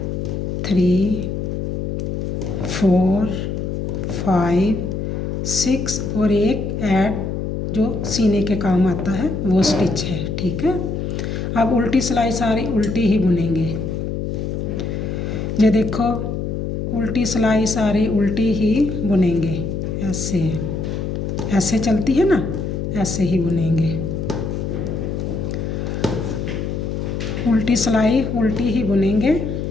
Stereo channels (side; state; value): left; noise; hum, 3 dB below the sound